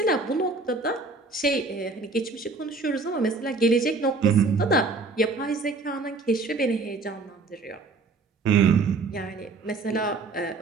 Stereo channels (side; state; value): left; quieter; 3.9 dB